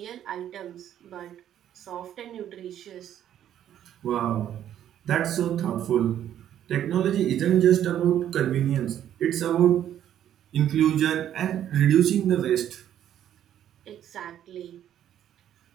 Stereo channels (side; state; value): left; quieter; 10.8 dB